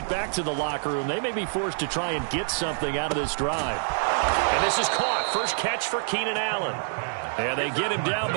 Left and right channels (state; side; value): silent; left; digital silence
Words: back to the locker room, they may be forced to try and get something out of this drive. And this is caught. First catch for Keenan Allen. And they get him down,